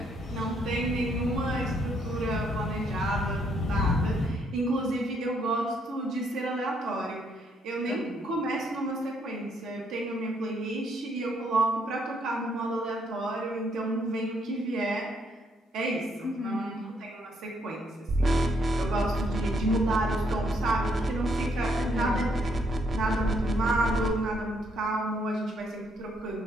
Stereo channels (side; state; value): both; normal; correlation 0.71